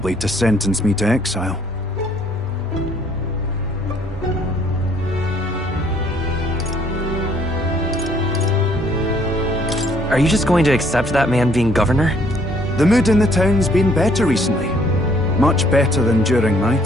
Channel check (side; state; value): both; normal; correlation 0.63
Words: to sentence me to exile. Are you just going to accept that man being governor? The mood in the town's been better recently. Much better than during my